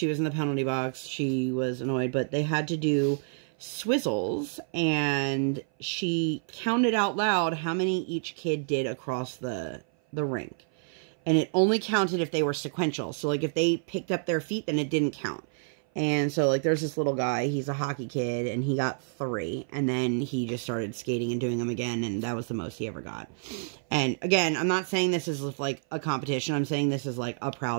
was in the penalty box. She was annoyed. But they had to do swizzles. And she counted out loud how many each kid did across the rink. And it only counted if they were sequential. So, like, if they picked up their feet, then it didn't count. And so, like, there's this little guy, he's a hockey kid, and he got 3, and then he just started skating and doing them again, and that was the most he ever got. And, again, I'm not saying this is, like, a competition, I'm saying this is, like, a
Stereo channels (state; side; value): silent; left; 57 dB below the other